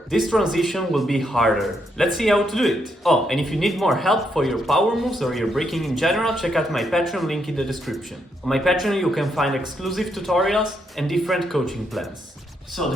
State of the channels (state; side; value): normal; both; correlation 0.77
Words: this transition will be harder. Let's see how to do it. Oh, and if you need more help for your power moves or your breaking in general, check out my Patreon link in the description. On my Patreon you can find exclusive tutorials and different coaching plans. So